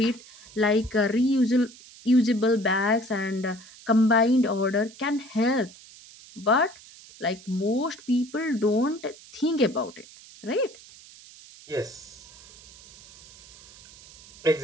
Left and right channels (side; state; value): right; noise; hiss, 21 dB below the sound